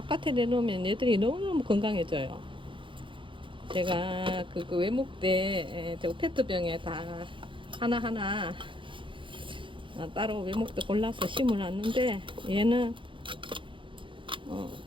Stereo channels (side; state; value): left; late; 0.24 ms